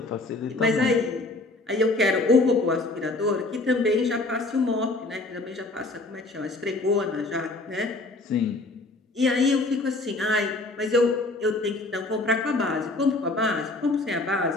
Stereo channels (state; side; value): quieter; right; 3.0 dB